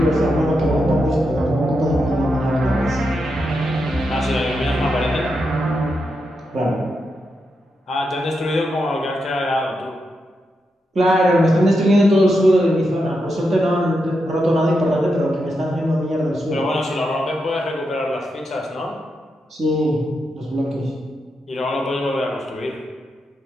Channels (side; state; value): both; normal; correlation 0.85